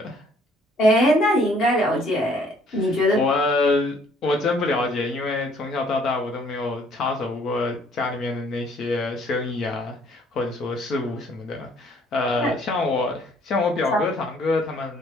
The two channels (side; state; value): both; normal; correlation 0.61